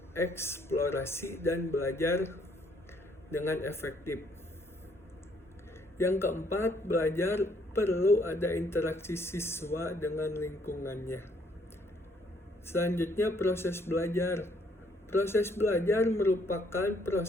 dan belajar dengan efektif. Yang keempat, belajar perlu ada interaksi siswa dengan lingkungannya. Selanjutnya, proses belajar. Proses belajar merupakan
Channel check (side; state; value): both; normal; correlation 0.67